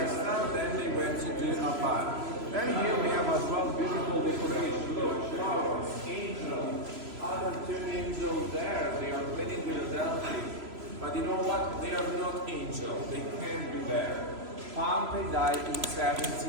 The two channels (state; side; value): late; left; 3.0 ms